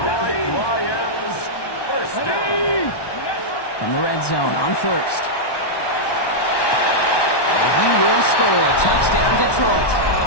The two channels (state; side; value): late; right; 1.1 ms